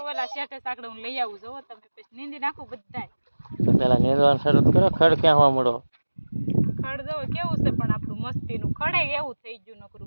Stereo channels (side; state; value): both; inverted; correlation -1.00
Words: ઓલા શેઠે સાકડે હું લઈ આવું જોવો તમે, પછી નીંદી નાખું બધાય। તો પેલા નીંદવાનું શરૂ કરો, ખડ ક્યાં હોવા મળો? ખડ જો કેવું છે પણ આપણું મસ્તીનું, ખડે એવું થઈ ગયું